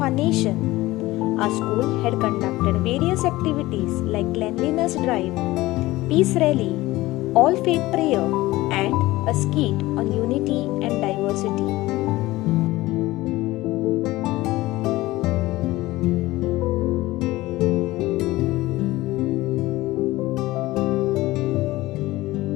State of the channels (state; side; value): quieter; right; 18.5 dB